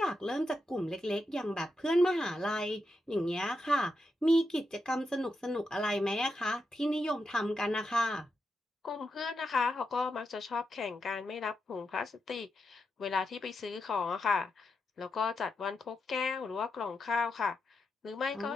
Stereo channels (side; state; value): both; normal; correlation 0.86